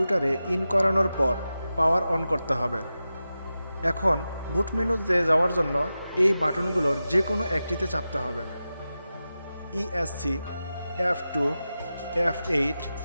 ইন করানোর পর পাওয়ার অন করতে হবে। এখন বুট মেনুতে যাওয়ার জন্য এই বাটনগুলোর যে কোনো একটিতে চাপতে হবে। ESC, F2, F8,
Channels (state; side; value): inverted; both; correlation -0.93